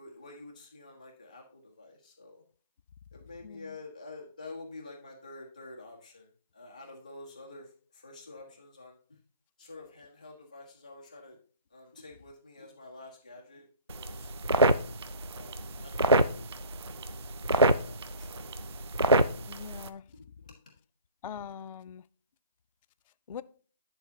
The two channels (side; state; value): both; inverted; correlation -0.44